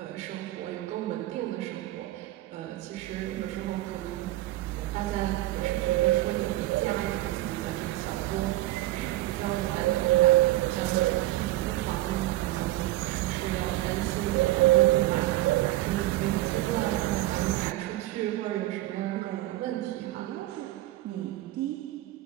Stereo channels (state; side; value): quieter; left; 16.6 dB